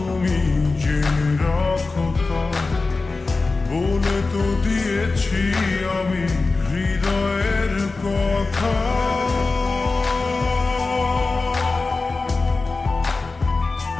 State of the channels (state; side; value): quieter; right; 3.7 dB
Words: জেনে রাখো তা, বলে তো দিয়েছি আমি হৃদয়ের কথা।